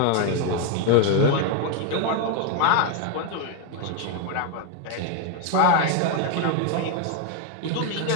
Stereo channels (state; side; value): different; both; correlation 0.01